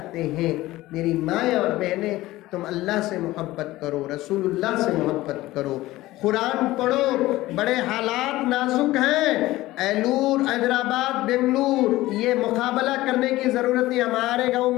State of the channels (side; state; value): right; quieter; 17.3 dB